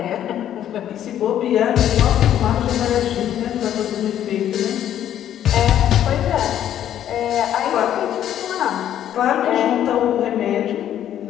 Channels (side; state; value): right; quieter; 10.9 dB